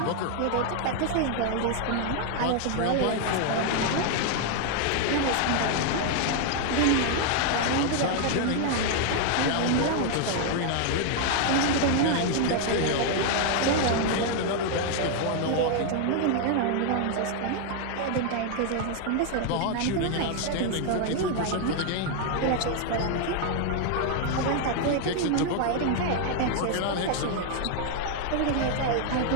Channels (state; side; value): different; both; correlation 0.00